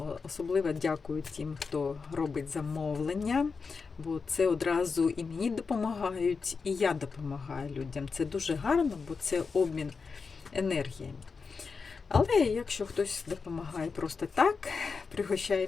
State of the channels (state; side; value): quieter; right; 5.0 dB